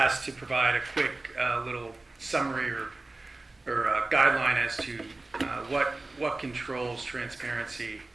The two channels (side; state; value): left; quieter; 3.1 dB